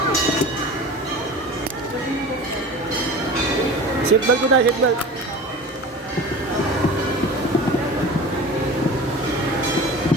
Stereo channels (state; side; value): normal; both; correlation 0.36